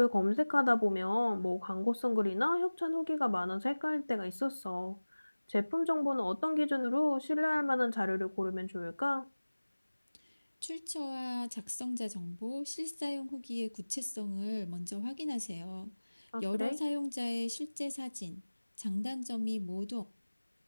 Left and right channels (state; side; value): inverted; both; correlation -1.00